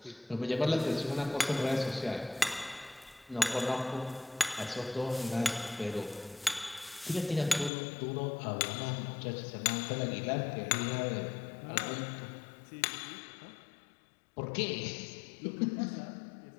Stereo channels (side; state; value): right; drops out; at 7.7 s